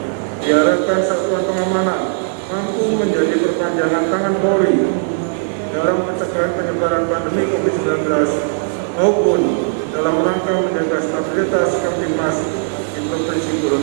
Diharapkan Satuan Pengamanan mampu menjadi perpanjangan tangan Polri dalam pencegahan penyebaran pandemi COVID-19 maupun dalam rangka menjaga stabilitas Kamtibmas di Provinsi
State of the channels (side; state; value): left; silent; 68 dB below the other